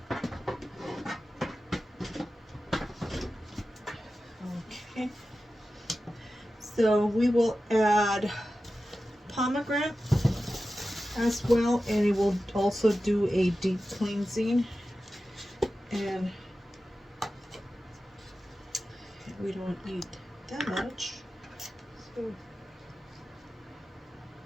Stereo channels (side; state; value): both; normal; correlation 0.93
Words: Okay. So we will add pomegranate as well, and it will also do a deep cleansing. And we don't need that much. So